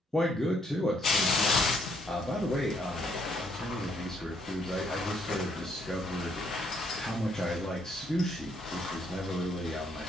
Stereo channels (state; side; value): normal; both; correlation 0.70